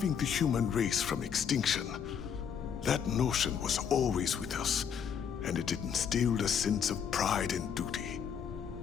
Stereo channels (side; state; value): right; quieter; 7.6 dB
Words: the human race from extinction. That notion was always with us, and it instilled a sense of pride and duty.